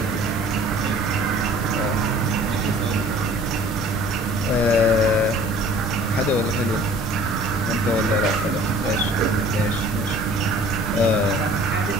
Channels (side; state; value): both; normal; correlation 0.50